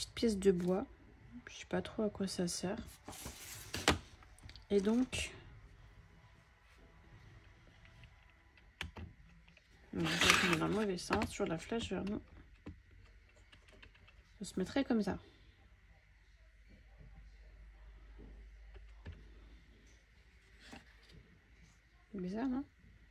pièce de bois. Je sais pas trop à quoi ça sert. Et donc on est dans le mauvais sens, sur la flèche vers nous. Je se mettrait comme ça. C'est bizarre, non?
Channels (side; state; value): both; identical; correlation 1.00